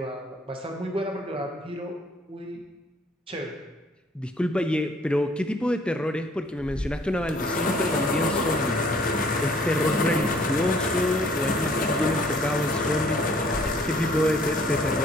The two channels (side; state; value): both; normal; correlation 0.59